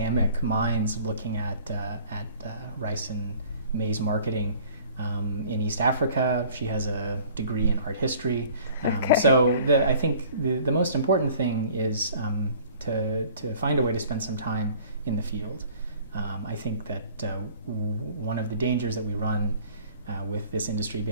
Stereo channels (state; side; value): inverted; both; correlation -0.50